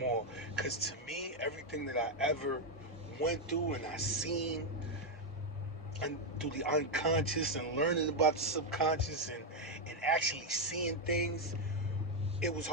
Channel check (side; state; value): both; normal; correlation 0.03